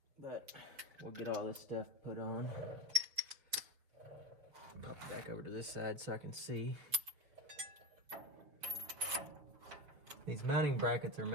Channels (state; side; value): late; left; 6.9 ms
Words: But we'll get all this stuff put on. Pop it back over to this side so I can see. These mounting brackets are